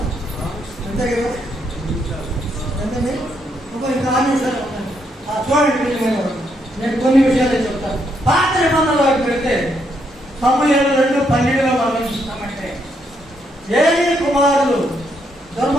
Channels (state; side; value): normal; both; correlation 0.76